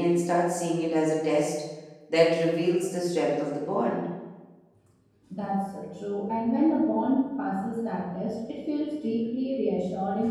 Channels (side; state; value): both; identical; correlation 1.00